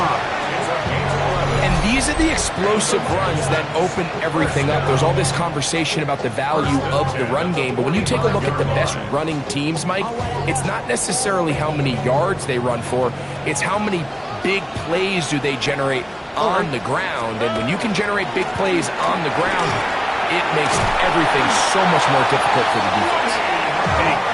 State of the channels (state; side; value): identical; both; correlation 1.00